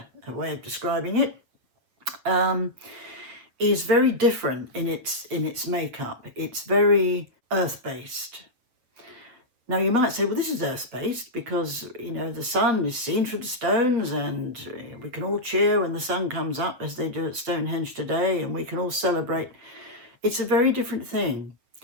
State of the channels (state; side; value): late; left; 8.3 ms